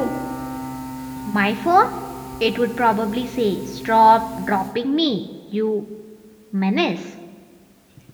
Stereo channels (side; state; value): both; identical; correlation 1.00